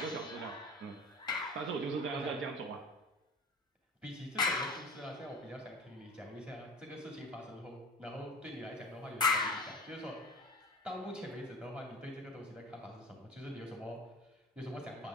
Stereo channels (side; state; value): both; normal; correlation 0.36